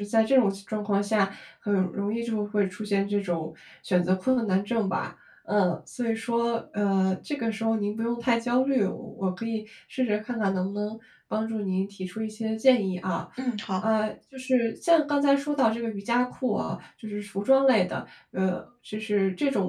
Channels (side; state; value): both; identical; correlation 1.00